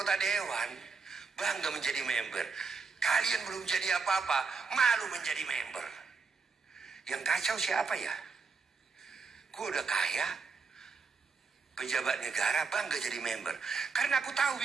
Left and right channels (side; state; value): left; quieter; 4.9 dB